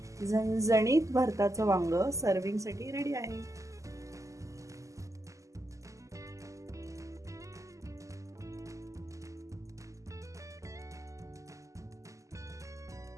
झणझणीत भरताचं वांग सर्विंगसाठी रेडी आहे.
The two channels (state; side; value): late; left; 0.16 ms